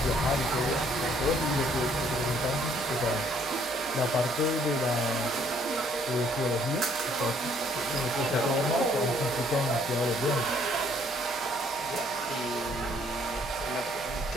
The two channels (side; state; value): both; normal; correlation 0.64